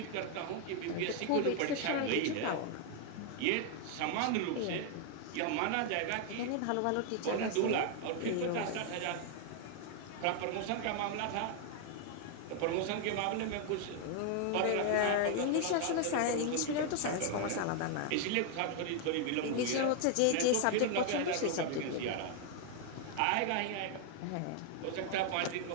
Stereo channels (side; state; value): both; different; correlation 0.00